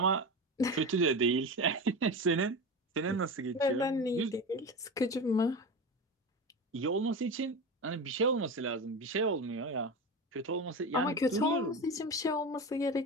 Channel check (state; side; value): normal; both; correlation 0.24